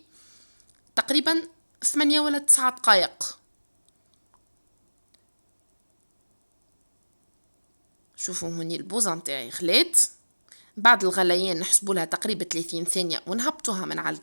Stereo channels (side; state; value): both; inverted; correlation -1.00